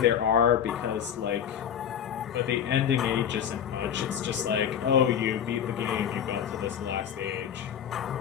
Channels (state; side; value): quieter; right; 8.9 dB